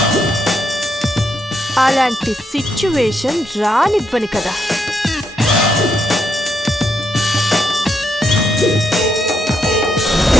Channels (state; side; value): normal; both; correlation 0.78